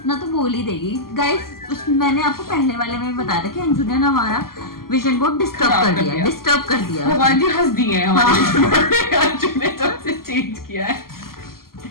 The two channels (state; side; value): late; right; 0.92 ms